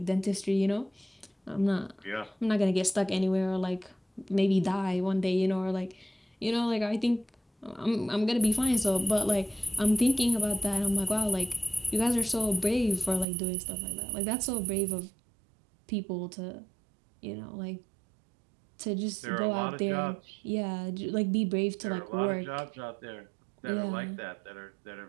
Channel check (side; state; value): left; drops out; at 13.2 s